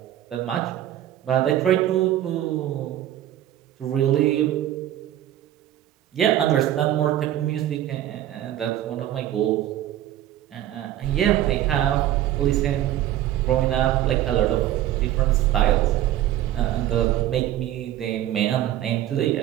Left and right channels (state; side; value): quieter; left; 12.7 dB